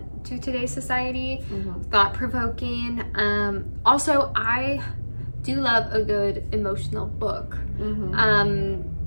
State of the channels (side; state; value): both; inverted; correlation -1.00